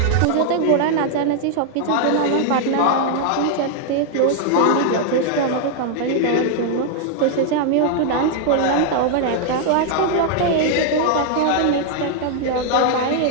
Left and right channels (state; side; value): different; both; correlation 0.00